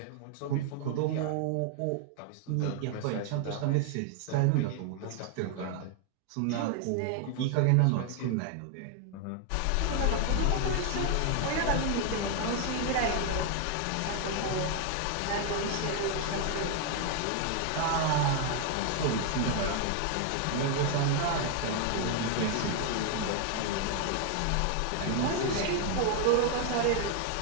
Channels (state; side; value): different; both; correlation 0.00